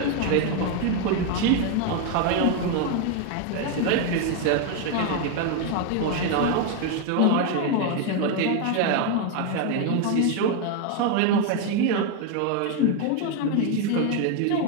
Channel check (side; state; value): both; different; correlation 0.01